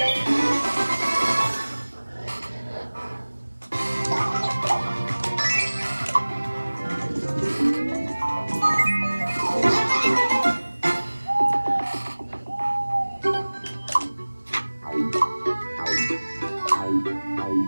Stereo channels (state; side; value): inverted; both; correlation -1.00